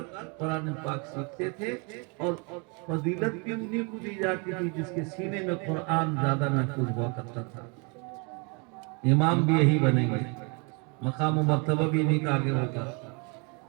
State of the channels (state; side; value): quieter; left; 33.0 dB